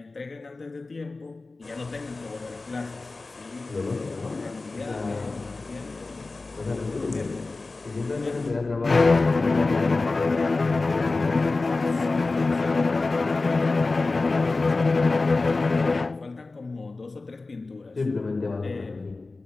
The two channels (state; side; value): quieter; right; 3.5 dB